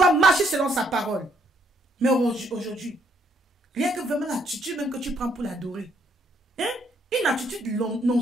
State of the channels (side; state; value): both; normal; correlation 0.69